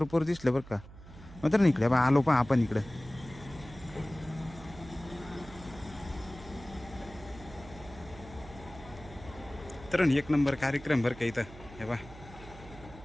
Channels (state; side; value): noise; right; hum, 17 dB below the sound